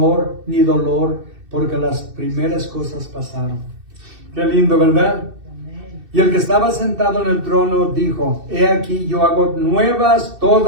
ni dolor, porque las primeras cosas pasaron. Qué lindo, ¿verdad? Y el que estaba sentado en el trono dijo, he aquí yo hago nuevas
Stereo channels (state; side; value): late; left; 2.6 ms